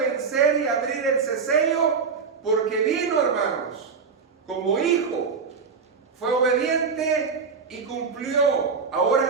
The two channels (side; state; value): left; quieter; 5.5 dB